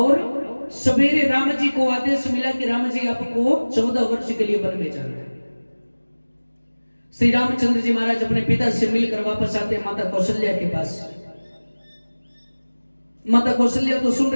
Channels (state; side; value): inverted; both; correlation -1.00